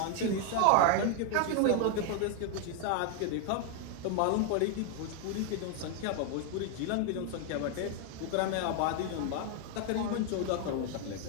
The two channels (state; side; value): different; both; correlation 0.00